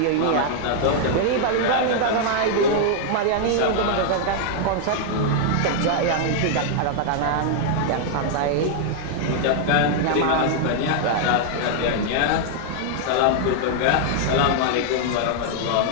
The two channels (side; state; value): both; different; correlation 0.00